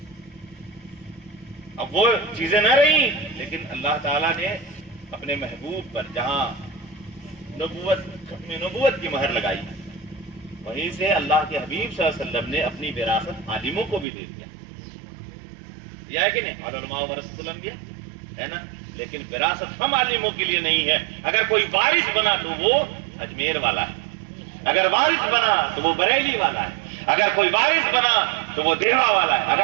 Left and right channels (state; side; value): drops out; left; at 14.1 s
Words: اب وہ چیزیں نہ رہی، لیکن اللہ تعالیٰ نے اپنے محبوب پر جہاں نبوت کی مہر لگائی، وہیں سے اللہ کے حبیب صلی اللہ علیہ وسلم نے اپنی وراثت عالموں کو بھی دے دیا. یہ ہے کہ نہیں؟ علماء ورثۃ الانبیاء ہے نا. لیکن وراثت ہم عالموں کے لیے نہیں ہے. اگر کوئی وارث بنا تو وہ اجمیر والا ہے، اگر وارث بنا تو وہ بریلی والا ہے، اگر کوئی وارث بنا تو وہ دیوا والا ہے،